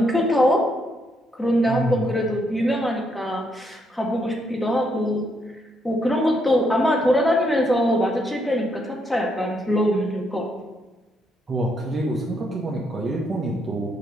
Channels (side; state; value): both; normal; correlation 0.76